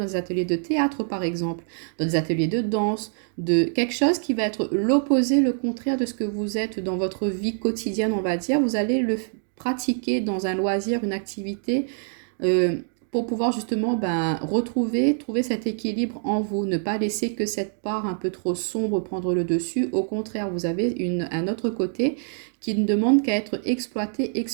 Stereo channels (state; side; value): silent; left; digital silence